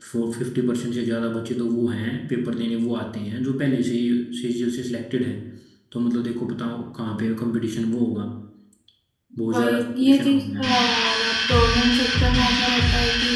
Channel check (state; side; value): identical; both; correlation 1.00